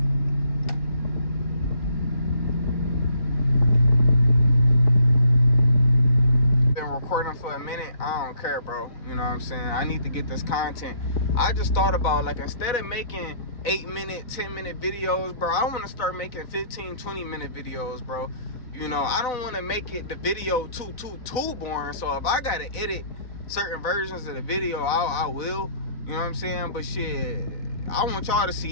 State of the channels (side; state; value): right; late; 3.9 ms